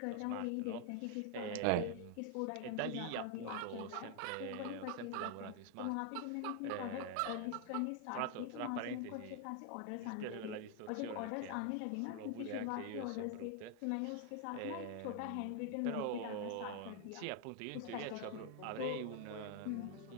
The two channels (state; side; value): different; both; correlation 0.00